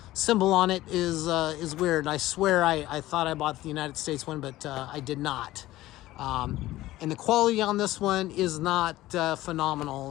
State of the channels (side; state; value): right; quieter; 16.3 dB